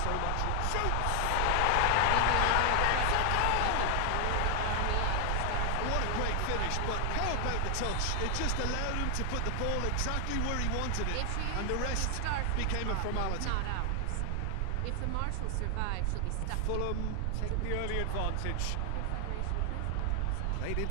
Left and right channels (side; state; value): both; different; correlation 0.00